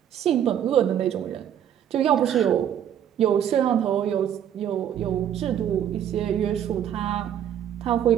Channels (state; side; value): quieter; left; 9.9 dB